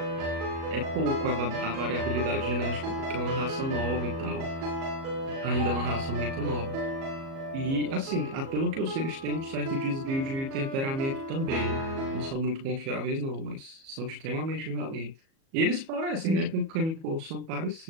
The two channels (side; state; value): left; late; 37 ms